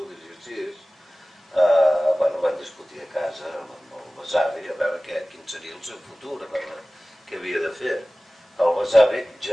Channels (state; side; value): normal; both; correlation 0.97